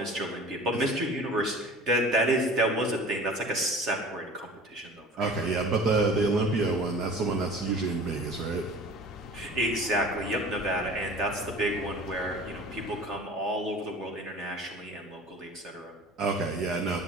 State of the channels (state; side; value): normal; both; correlation 0.42